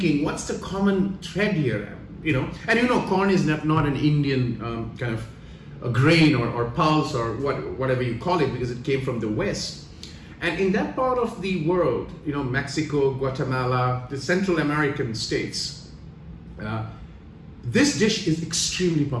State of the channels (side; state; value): both; identical; correlation 1.00